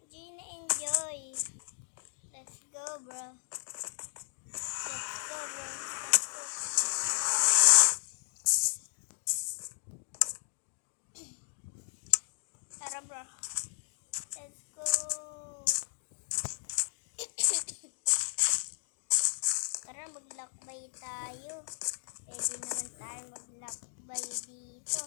enjoy. Let's go, bro. Let's go, bro. Let's go. Tara, bro. Let's go. Tara, maglakbay tayo. Pwede naman tayo maglakbay dito.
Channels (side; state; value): right; silent; digital silence